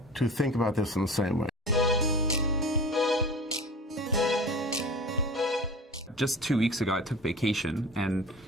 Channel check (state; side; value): normal; both; correlation 0.36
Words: to think about this in the same way. Just 2 weeks ago, I took vacation, and